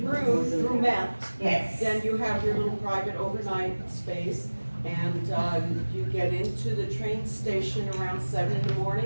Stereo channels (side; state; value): both; inverted; correlation -1.00